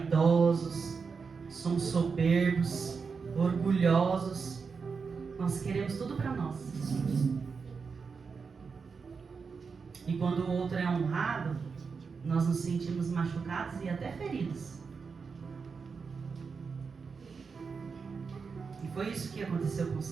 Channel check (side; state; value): left; quieter; 5.3 dB